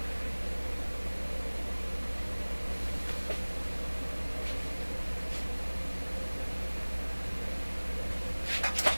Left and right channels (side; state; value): both; inverted; correlation -1.00